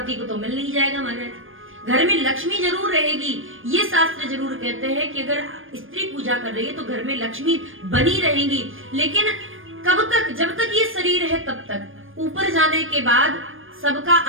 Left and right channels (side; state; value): left; late; 0.59 ms